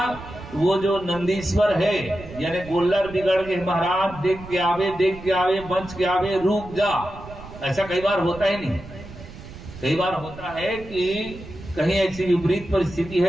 वो जो नंदीश्वर है यानी गोल्लर बिगड़ गए महाराज, देख के आवे, देख के आवे, बच के आवे, रुक जा। ऐसा कई बार होता ही नहीं। कई बार होता है कि कहीं ऐसी विपरीत परिस्थिति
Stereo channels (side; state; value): right; noise; rumble, 15 dB below the sound